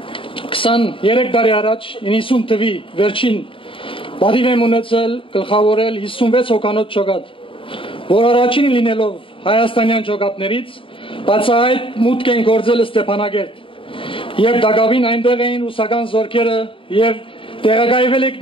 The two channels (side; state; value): right; late; 0.25 ms